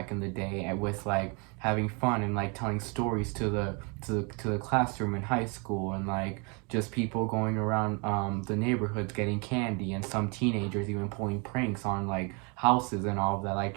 in the day, and with like having fun and like telling stories to the classroom in high school, and like just people going around the neighborhoods getting candy, and some teenagers even pulling pranks on like houses and all of that, like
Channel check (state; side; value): quieter; left; 32.4 dB